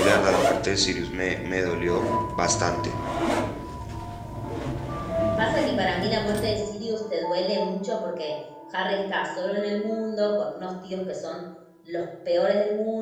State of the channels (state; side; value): identical; both; correlation 1.00